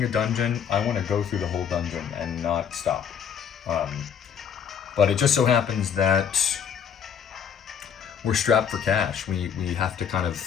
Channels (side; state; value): right; quieter; 7.7 dB